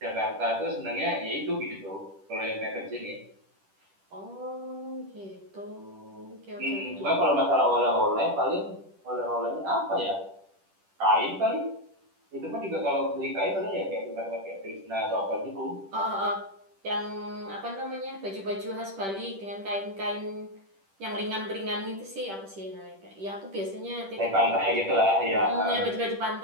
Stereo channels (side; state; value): left; late; 10 ms